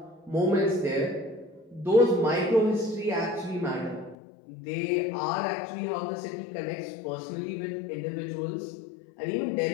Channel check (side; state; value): right; drops out; at 4.2 s